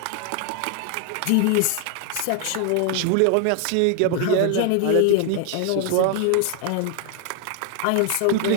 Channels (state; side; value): different; both; correlation 0.00